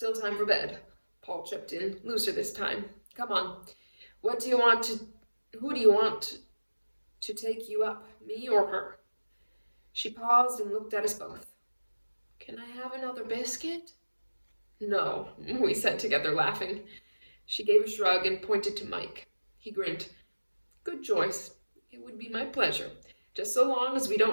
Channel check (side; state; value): both; inverted; correlation -1.00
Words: time for bed. Paul chipped in, looser this time. Come on, who do you want to take you up, me or her? She paused and looked at us both. Can I have another biscuit? No, we said together, laughing. She gave a shrug and pointed to Mike. He grinned. Good choice. It would be my pleasure, just so long as we